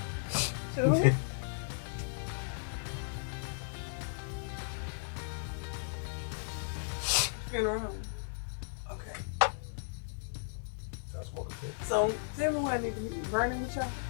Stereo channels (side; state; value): right; silent; 54 dB below the other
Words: Two? there. Funeral home. Okay. I smoke a fit. So tell me what I need to be burning with y'all.